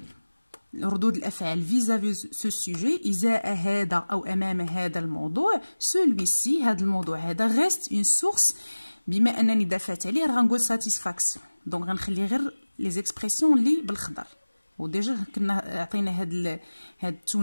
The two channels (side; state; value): both; inverted; correlation -1.00